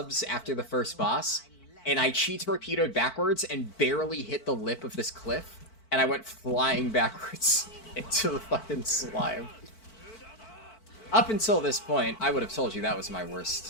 after the first boss, and I chi torpedoed backwards and barely hit the lip of this cliff, and I went flying backwards into the fucking slime. Up until this point, I would have told you that was my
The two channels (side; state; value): right; late; 4.5 ms